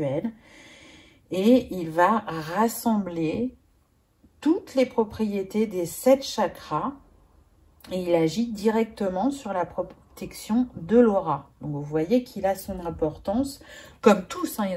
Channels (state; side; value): identical; both; correlation 1.00